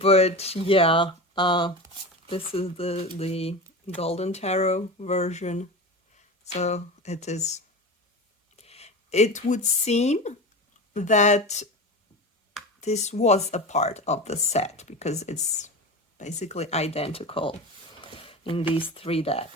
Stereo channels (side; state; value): both; normal; correlation 0.28